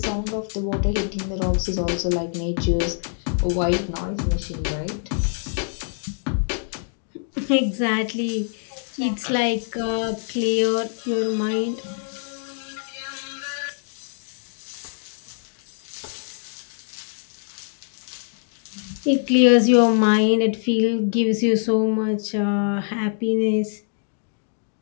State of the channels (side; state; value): right; silent; digital silence